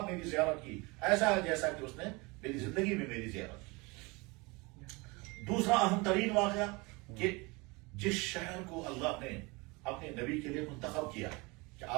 میری زیارت کی ایسا ہے جیسا کہ اس نے میری زندگی میں میری زیارت کی. دوسرا اہم ترین واقعہ کہ جس شہر کو اللہ نے اپنے نبی کے لیے منتخب کیا کہ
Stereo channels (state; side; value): quieter; left; 26.0 dB